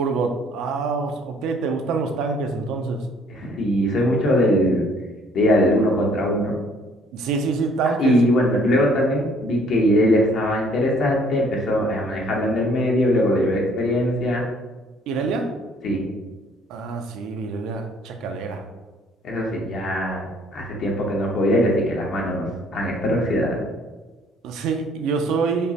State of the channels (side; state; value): both; normal; correlation 0.60